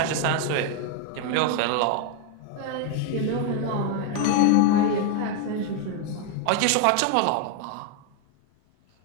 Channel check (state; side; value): different; both; correlation 0.01